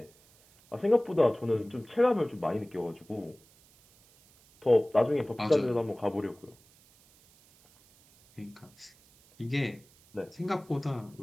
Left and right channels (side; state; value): right; noise; hiss, 29 dB below the sound